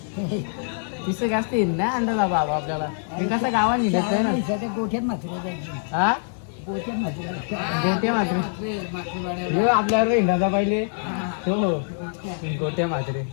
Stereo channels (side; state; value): right; silent; digital silence